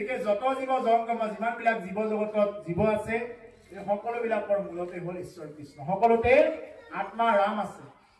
যত জীৱ জংগম যিমানবিলাক জীৱ জগতত জীৱ আছে এই সকলোবিলাকৰ মূলতে হ'ল ঈশ্বৰ কৃষ্ণ সকলোতে আত্মা ৰাম আছে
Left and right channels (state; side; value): identical; both; correlation 1.00